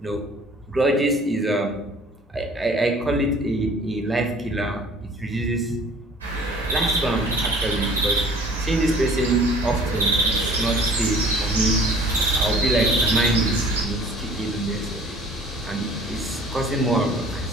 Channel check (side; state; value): both; normal; correlation 0.50